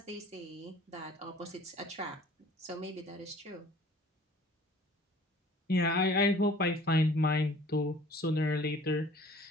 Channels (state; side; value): normal; both; correlation 0.50